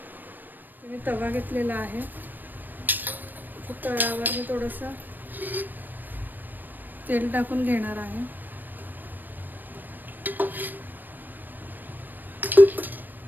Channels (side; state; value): left; late; 0.087 ms